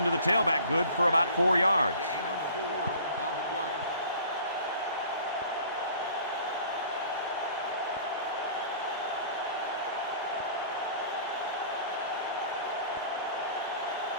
to the tailback good for about 4 yards. Gain of 4 on the play.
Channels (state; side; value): inverted; both; correlation -0.48